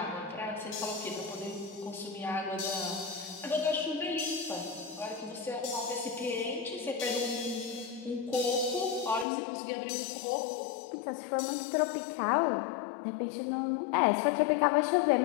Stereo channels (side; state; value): right; drops out; at 9.2 s